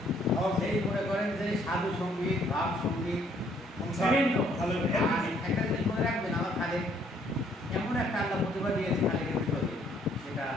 সেই মনে করেন যে সাধু সঙ্গীত ভাব সঙ্গীত বিভিন্ন ভালো একটা জিনিস মনে রাখবেন আমার খালে এমন একটা আল্লাহ প্রতিভা দিয়েছে খালের ভিতরে সেটা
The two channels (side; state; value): both; normal; correlation 0.65